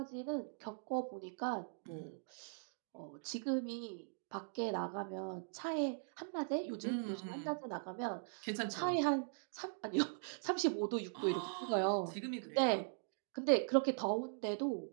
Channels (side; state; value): left; silent; digital silence